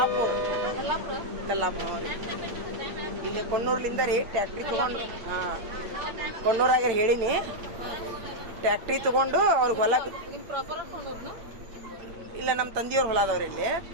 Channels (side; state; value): left; late; 8.8 ms